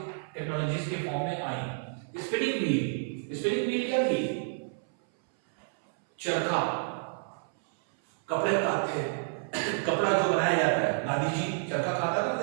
टेक्नोलॉजीज के फॉर्म में आई। स्पिनिंग व्हील, स्पिनिंग व्हील क्या थी, चरखा, कपड़े काटते, कपड़ा जो बनाया जाता है, गांधी जी चरखा खाता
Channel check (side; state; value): left; silent; 58 dB below the other